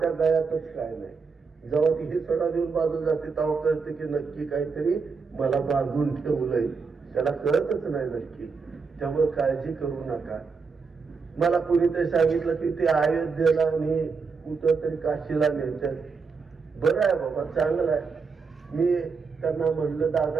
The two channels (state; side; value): quieter; left; 5.0 dB